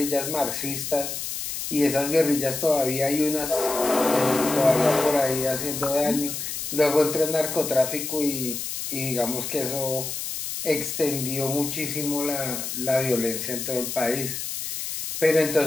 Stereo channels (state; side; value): noise; left; hiss, 5 dB below the sound